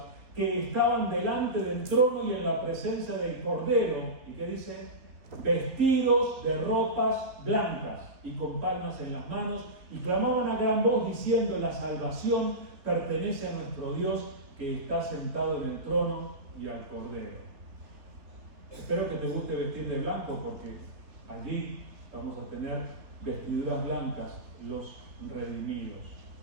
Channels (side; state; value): left; late; 3.4 ms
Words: que estaban delante del trono y en la presencia del Cordero. ¿Y qué dice? Vestidos de ropas blancas y con palmas en las manos, y clamaban a gran voz diciendo: la salvación pertenece a nuestro Dios, que está sentado en el trono y al Cordero. Espero que te guste vestir de blanco, porque allí vamos a tener vestiduras blancas, los redimidos.